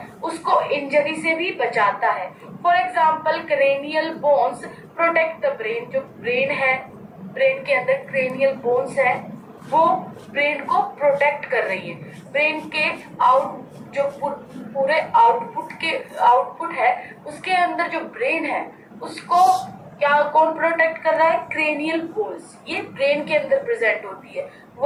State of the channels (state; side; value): identical; both; correlation 1.00